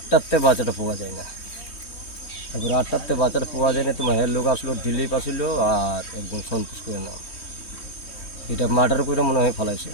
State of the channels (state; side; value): late; right; 3.2 ms